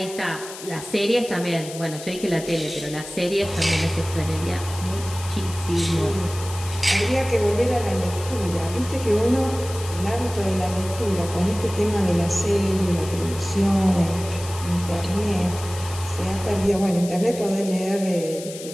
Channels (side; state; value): left; noise; hiss, 13 dB below the sound